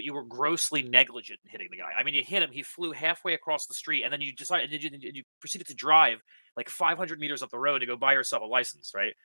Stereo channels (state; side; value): inverted; both; correlation -1.00